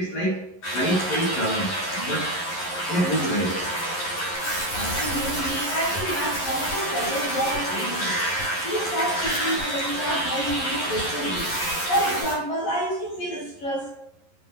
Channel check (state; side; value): late; right; 11 ms